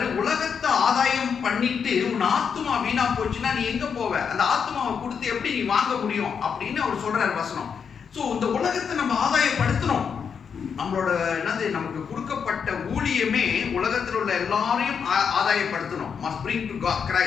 உலகத்தை ஆதாயம் பண்ணிட்டு உன் ஆத்மா வீணா போச்சுன்னா நீ எங்க போவ? அந்த ஆத்மாவை கொடுத்து எப்படி நீ வாங்க முடியும் அப்படின்னு அவர் சொல்றாரு வசனம். சோ இந்த உலகத்தை நம்ம ஆதாயப்படுத்தணும். நம்மளோட நமக்கு கொடுக்கப்பட்ட ஊழியமே உலகத்தில் உள்ள எல்லாரையும் ஆதாயப்படுத்தணும். must bring to God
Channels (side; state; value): right; quieter; 6.7 dB